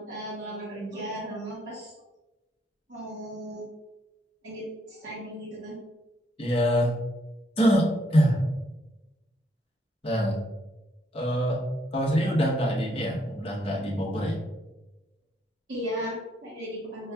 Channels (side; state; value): both; normal; correlation 0.72